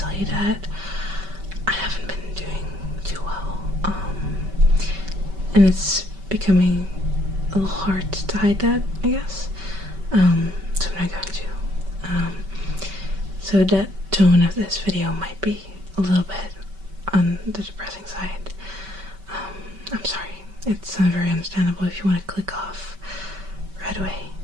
you that I haven't been doing too well, and it's becoming a little hard to hide that, I guess. So I'm not going to. So the tone of this video might be a little bit on the depressing side. I'm sorry. It's very understandable if you want to click off right away.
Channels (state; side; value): late; left; 5.2 ms